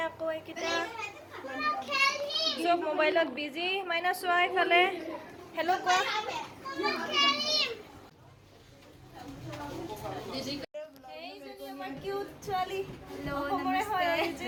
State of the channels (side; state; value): both; identical; correlation 1.00